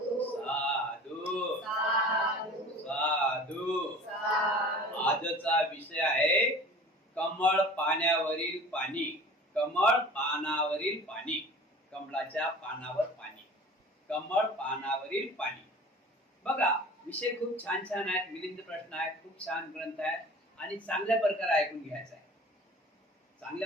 साधू साधू साधू आजचा विषय आहे कमळ पाण्यावरील पाणी. कमळ पानावरील पाणी. कमळाच्या पानावर पाणी. कमळ पानावरील पाणी. बघा, विषय खूप छान छान आहेत. मिलिंद प्रश्न आहेत. खूप छान ग्रंथ आहे आणि चांगल्या प्रकारे ऐकून घ्यायचा आहे.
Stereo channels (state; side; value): normal; both; correlation 0.42